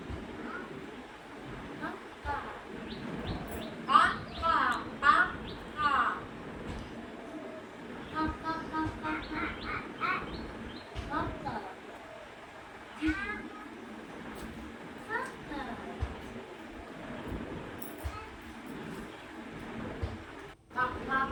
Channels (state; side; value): identical; both; correlation 1.00